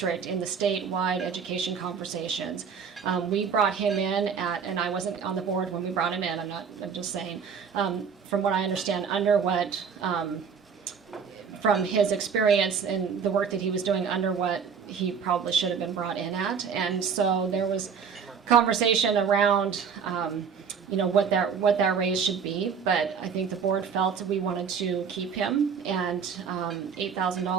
in the statewide education conversations. We brought him in and I wasn't on the board when we brought him in, I'm just saying, from what I understand, from his experience and the work that he was doing under what he probably should have been brought in at. And so there was conversation around what that raise should be, but I think the board felt we wanted to keep him, and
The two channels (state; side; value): quieter; left; 6.5 dB